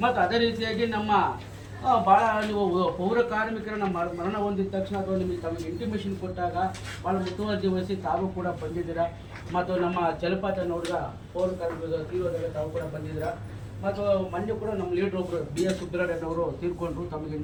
ಮತ್ತು ಅದೇ ರೀತಿಯಾಗಿ ನಮ್ಮ ಭಾಳ ನೀವು ಪೌರ ಕಾರ್ಮಿಕರನ್ನ ಮರಣ ಹೊಂದಿದ ತಕ್ಷಣ ಅಥವಾ ನಿಮಗೆ ತಮಗೆ ಇಂಟಿಮೇಷನ್ ಕೊಟ್ಟಾಗ ಭಾಳ ಮುತುವರ್ಜಿ ವಹಿಸಿ ತಾವು ಕೂಡ ಬಂದಿದ್ದೀರಾ. ಮತ್ತು ನಮ್ಮ ಜಲಪಾತ ನೋಡಿದ ಪೌರ ಕಾರ್ಮಿಕರ ತೀವ್ರದಾಗ ತಾವು ಕೂಡ ಬಂದಿದ್ದೀರಾ. ಮತ್ತು ಮೊನ್ನೆ ಕೂಡ ನಮ್ಮ ಲೀಡರ್ ಒಬ್ಬರು BS ಸುಬ್ರಹ್ಮಣ್ಯನವರು ತೀರ್ಕೊಂಡ್ರು, ತಮಗೆ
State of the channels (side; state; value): both; identical; correlation 1.00